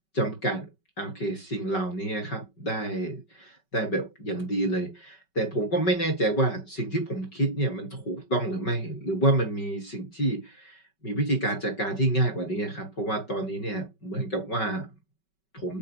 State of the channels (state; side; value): late; right; 5.3 ms